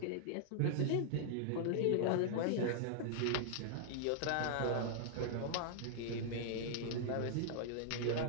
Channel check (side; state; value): both; different; correlation -0.01